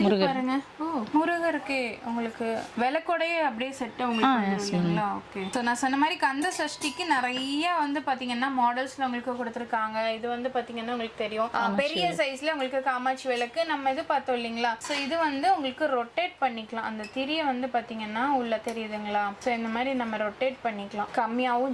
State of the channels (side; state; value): both; identical; correlation 1.00